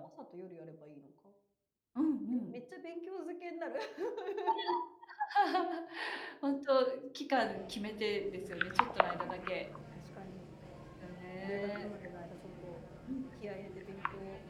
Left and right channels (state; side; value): identical; both; correlation 1.00